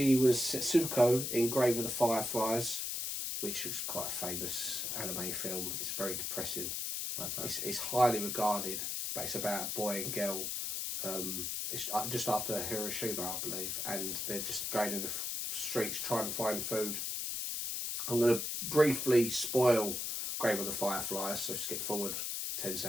was Setsuko in Grave of the Fireflies, which was quite a famous anime film. It's very depressing. Okay. It's highly regarded, but it's about a boy and girl. It's just after Hiroshima, I believe, and they're just going in the streets trying to find food. I'm going to briefly spoil Grave of the Fireflies, so skip forward 10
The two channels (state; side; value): noise; left; hiss, 2 dB below the sound